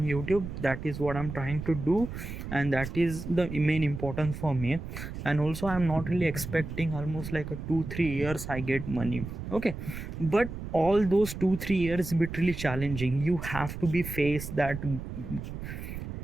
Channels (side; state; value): right; noise; rumble, 8 dB below the sound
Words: YouTube. That is what I'm trying to do, and that is the main importance for me. And also I'm not really expecting almost like a 2 3 years I get money. Okay, but all those 2 3 years be really challenging. You have to be faced that.